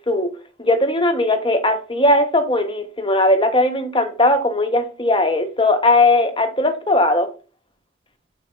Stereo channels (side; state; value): both; normal; correlation 0.17